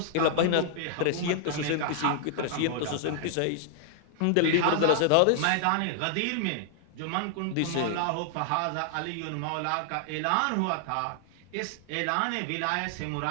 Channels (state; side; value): different; both; correlation -0.01